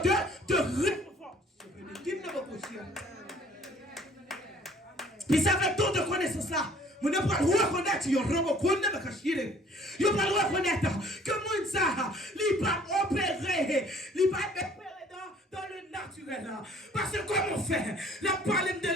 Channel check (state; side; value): normal; both; correlation 0.56